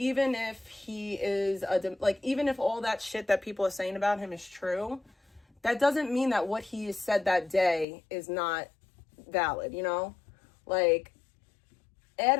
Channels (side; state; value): right; drops out; at 7.9 s